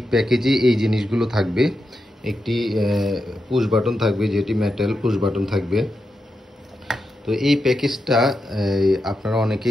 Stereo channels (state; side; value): normal; both; correlation 0.87